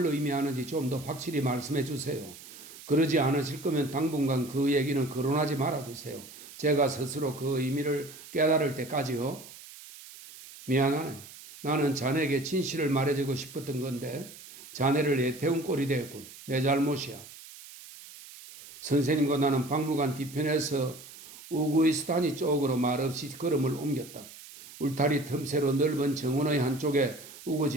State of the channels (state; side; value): noise; right; hiss, 17 dB below the sound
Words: 의미하는지 좀 더 확실히 말씀해 주세요. 그러지 않으실 거면 당분간 그 얘기는 거론하지 말아주세요. 제가 스스로 그 의미를 깨달을 때까지요. 미안하네. 나는 자네에게 진실을 말해주고 싶었던 건데 자네를 애태운 꼴이 됐군. 내 잘못이야. 선생님과 나는 박물관 뒤편에서 우구이스탄이 쪽으로 말없이 걸음을 옮겼다. 울타리 틈새로 넓은 정원의 한쪽에